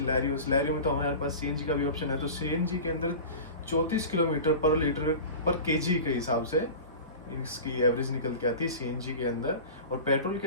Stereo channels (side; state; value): both; inverted; correlation -0.33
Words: में तो हमारे पास सीएनजी का भी ऑप्शन है। तो सीएनजी के अंदर 34 किलोमीटर पर लीटर पर केजी के हिसाब से इसकी एवरेज निकल के आती है सीएनजी के अंदर। और पेट्रोल के